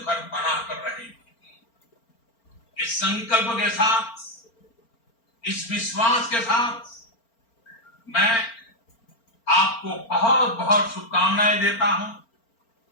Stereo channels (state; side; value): late; right; 4.4 ms